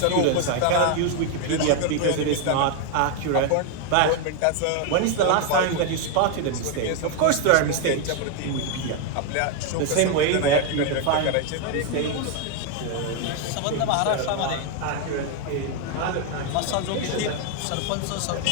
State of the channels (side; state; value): both; different; correlation 0.01